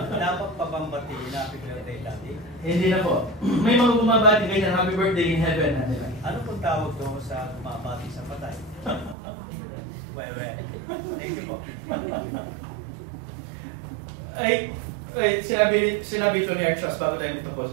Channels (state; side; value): drops out; left; at 9.2 s